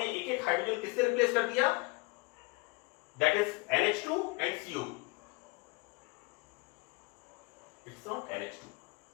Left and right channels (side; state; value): right; quieter; 27.4 dB